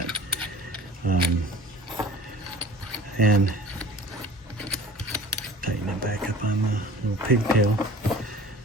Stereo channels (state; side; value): normal; both; correlation 0.44